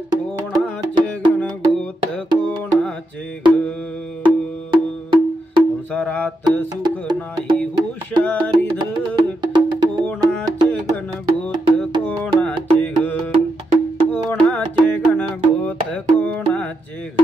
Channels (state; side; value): normal; both; correlation 0.84